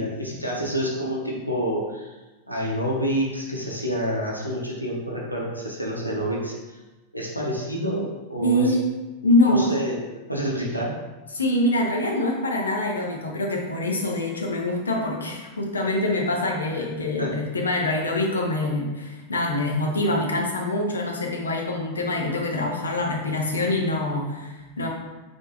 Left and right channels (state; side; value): normal; both; correlation -0.19